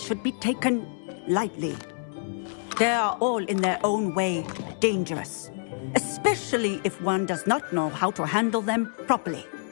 be taken lightly. They are all in their own way dangerous, especially if one does not know how to handle them properly.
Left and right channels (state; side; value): silent; right; 60 dB below the other